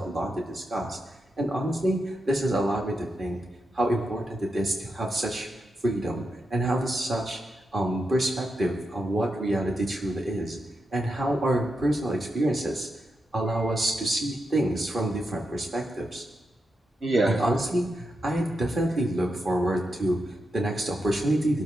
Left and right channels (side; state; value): both; normal; correlation 0.86